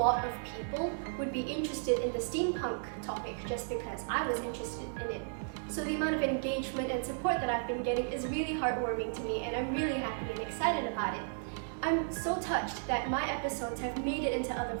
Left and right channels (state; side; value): silent; left; digital silence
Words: of people would be interested in the steampunk topic just because I was interested in it. So the amount of engagement and support that I've been getting is really heartwarming to me, and I'm really happy and excited about it. I'm so touched that my episodes have made it into other